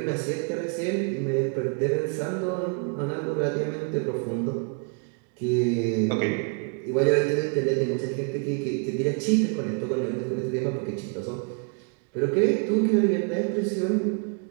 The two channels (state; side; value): quieter; left; 38.7 dB